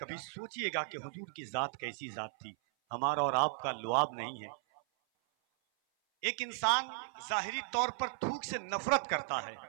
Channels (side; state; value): left; silent; 54 dB below the other